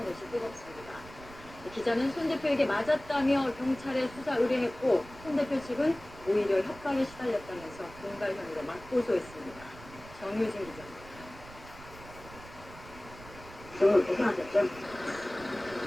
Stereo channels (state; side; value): noise; right; rumble, 18 dB below the sound